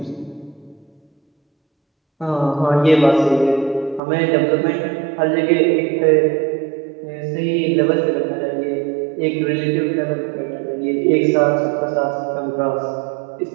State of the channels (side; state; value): left; drops out; at 4.0 s